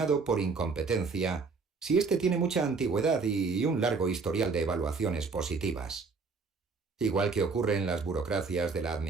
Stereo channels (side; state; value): left; quieter; 4.5 dB